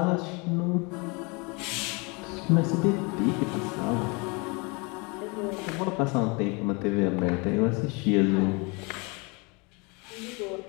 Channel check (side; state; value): right; quieter; 29.6 dB